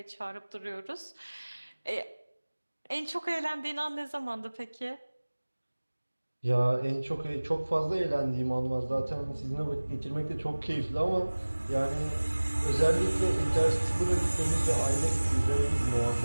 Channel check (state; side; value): inverted; both; correlation -1.00